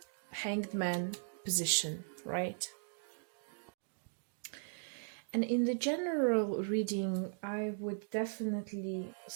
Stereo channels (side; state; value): left; silent; digital silence